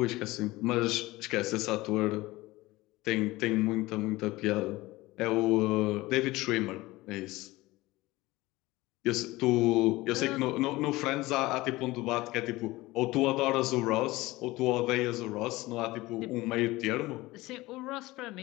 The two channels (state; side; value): quieter; right; 19.6 dB